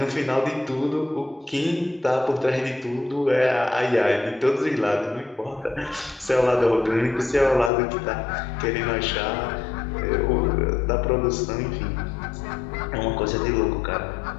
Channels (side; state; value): right; drops out; at 7.7 s